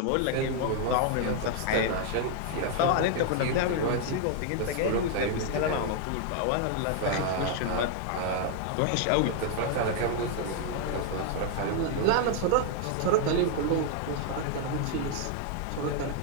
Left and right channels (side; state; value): both; different; correlation 0.00